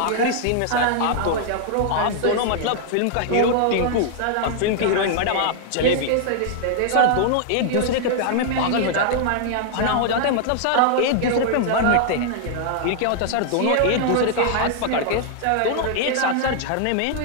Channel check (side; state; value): both; different; correlation -0.01